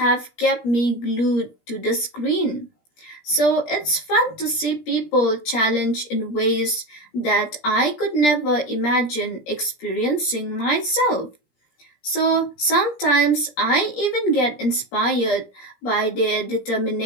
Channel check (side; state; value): right; late; 17 ms